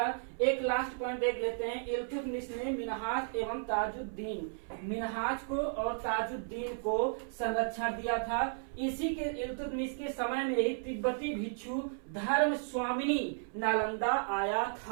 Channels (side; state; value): left; silent; 55 dB below the other